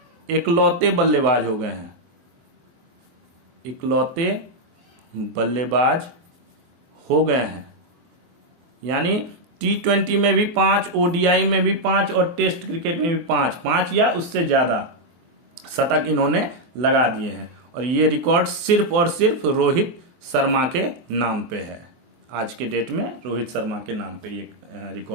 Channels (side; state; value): left; late; 24 ms